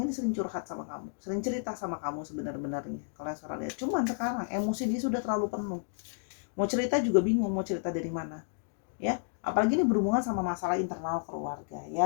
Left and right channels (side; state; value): right; silent; digital silence